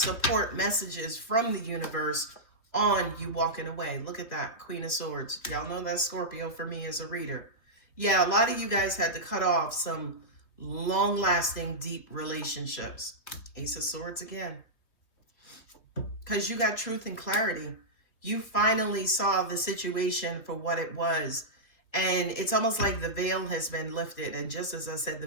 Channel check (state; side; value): late; right; 3.1 ms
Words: messages from the universe on you walking away. Look at that, Queen of Swords. Y'all know that's Scorpio for me as a reader. Yeah, a lot of you guys had to cut off some long-lasting, deep relationships. Ace of Swords again. Because you got truth and clarity. You finally saw the situation for what it was. And it's almost like the veil has been lifted. And just as I said,